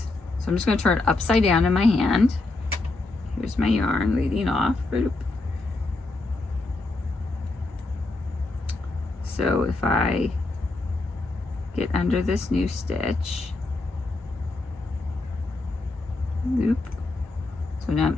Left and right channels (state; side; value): quieter; right; 3.2 dB